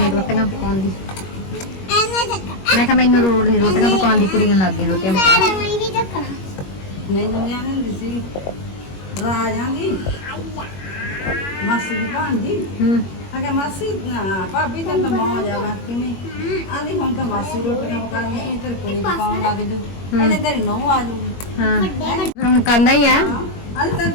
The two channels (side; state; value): right; late; 21 ms